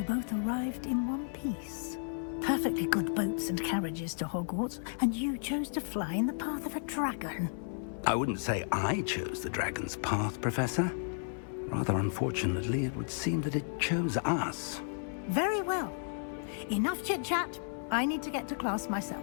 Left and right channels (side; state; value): right; silent; 56 dB below the other